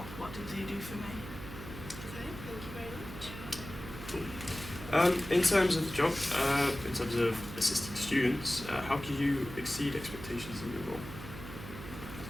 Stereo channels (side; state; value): right; noise; hum, 11 dB below the sound